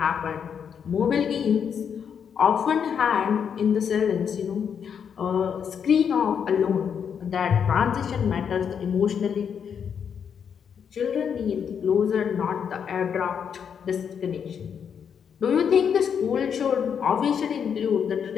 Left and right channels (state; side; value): quieter; right; 7.4 dB